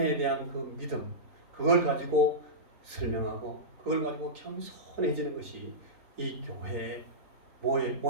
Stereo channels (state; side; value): late; left; 3.9 ms